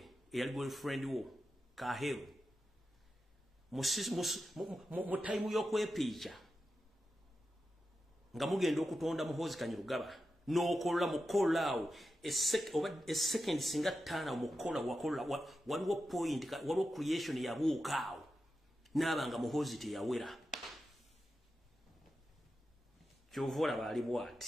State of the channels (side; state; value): both; normal; correlation 0.90